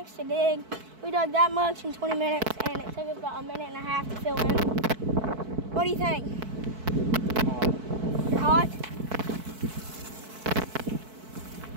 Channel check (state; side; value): late; left; 4.6 ms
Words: to dig. We dug that much in 20 minutes, and it took us about a minute and a half to fill in. What do you think? You're hot?